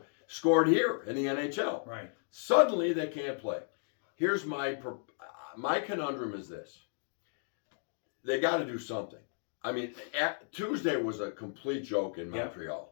scored here in the NHL. Right. Suddenly they can't play. Here's my conundrum is this. They got to do something. I mean, Tuesday was a complete joke in Montreal.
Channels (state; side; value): silent; right; 55 dB below the other